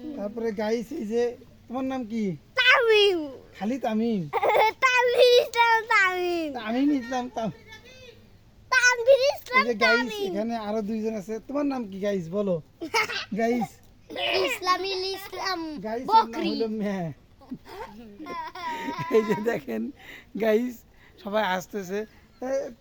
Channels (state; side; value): identical; both; correlation 1.00